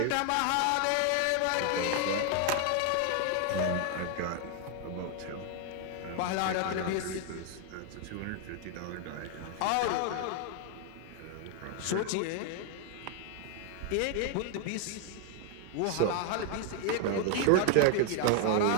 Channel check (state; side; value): different; both; correlation 0.00